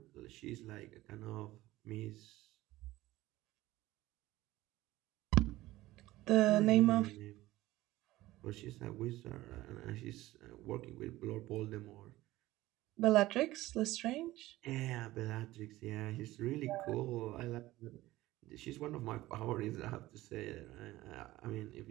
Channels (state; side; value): quieter; left; 17.1 dB